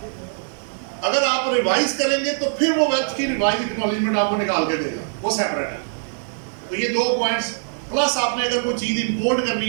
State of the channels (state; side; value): silent; left; digital silence